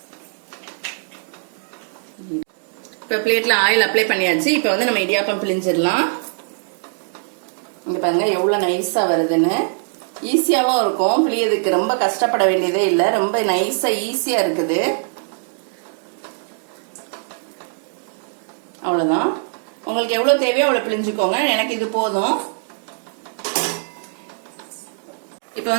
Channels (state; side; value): silent; left; digital silence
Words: இப்ப பிளேட்ல ஆயில் அப்ளை பண்ணியாச்சு. இப்ப நம்ம இடியாப்பம் பிழிஞ்சிடலாம். இங்க பாருங்க எவ்வளவு நைஸா வருதுன்னு. ஈஸியாவும் இருக்கும், பிழியதுக்கு ரொம்ப கஷ்டப்பட வேண்டியதே இல்ல. ரொம்ப நைஸா ஈஸியா இருக்குது. அவ்வளவுதான். உங்களுக்கு எவ்வளவு தேவையோ அவ்வளவு பிழிஞ்சுக்கோங்க. எனக்கு இது போதும். இப்ப